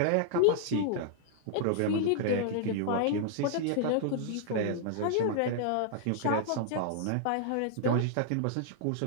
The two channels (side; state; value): both; different; correlation -0.01